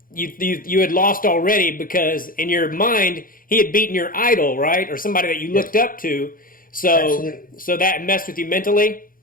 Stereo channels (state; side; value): late; right; 0.41 ms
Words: you had lost already because in your mind he had beaten your idol, right, or somebody that you looked up to. So that messed with you mentally.